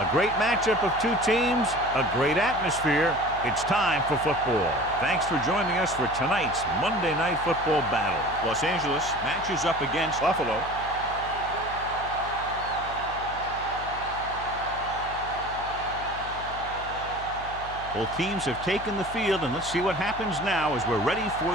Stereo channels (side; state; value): left; noise; hum, 14 dB below the sound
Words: A great matchup of two teams, a great atmosphere. It's time for football. Thanks for joining us for tonight's Monday Night Football battle. Los Angeles matches up against Buffalo. Both teams have taken the field, and let's see what happens now as we're ready for